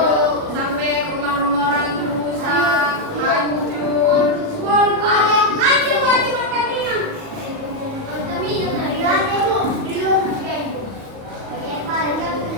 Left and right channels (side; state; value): left; late; 37 ms